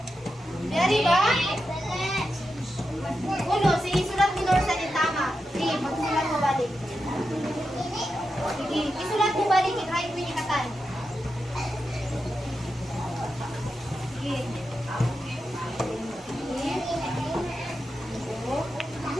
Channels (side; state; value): both; normal; correlation 0.88